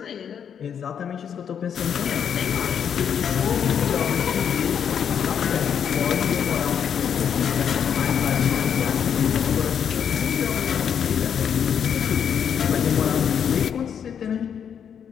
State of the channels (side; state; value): right; quieter; 8.0 dB